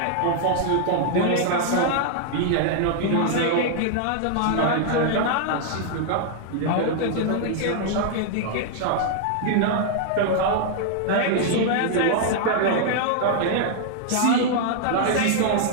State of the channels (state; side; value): different; both; correlation 0.00